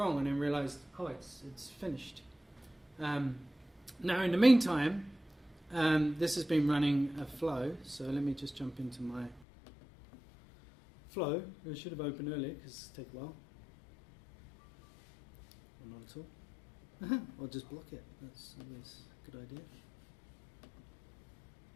And then realised, oh, it's finished. Now in the meantime, this has been running a flow, so let me just jump into my flow. It should have opened earlier because it takes a while. Or not at all. Or just block it. That's always a good idea.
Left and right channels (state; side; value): drops out; right; at 9.5 s